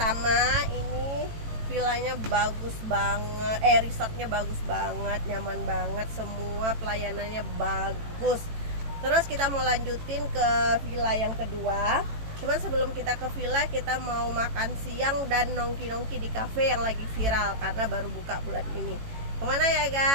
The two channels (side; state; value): left; late; 18 ms